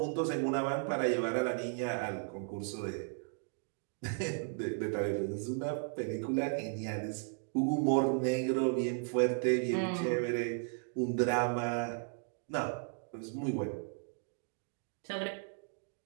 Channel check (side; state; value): left; silent; 54 dB below the other